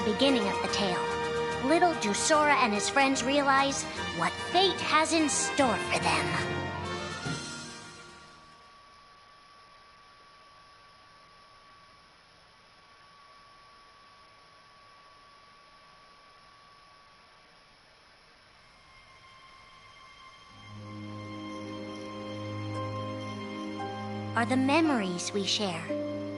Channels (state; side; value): identical; both; correlation 1.00